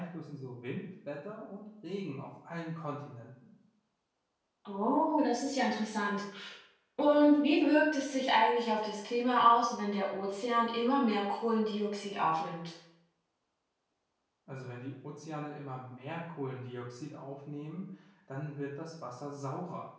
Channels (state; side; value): identical; both; correlation 1.00